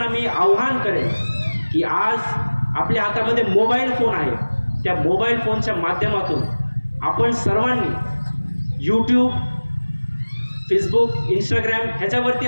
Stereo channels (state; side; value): inverted; both; correlation -1.00